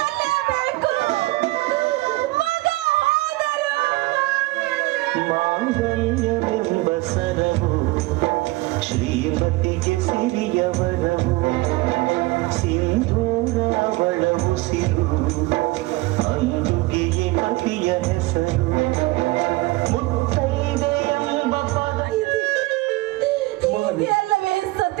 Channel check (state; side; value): quieter; left; 21.2 dB